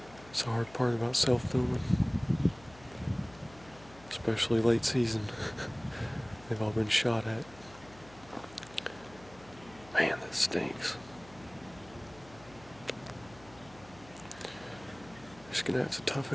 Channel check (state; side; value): noise; left; hum, 22 dB below the sound